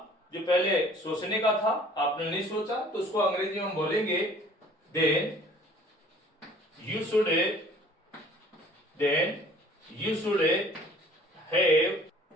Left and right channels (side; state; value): both; normal; correlation 0.52